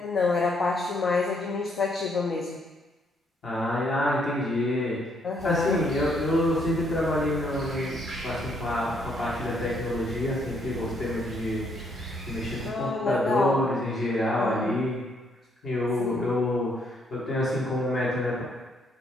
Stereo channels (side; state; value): both; normal; correlation 0.71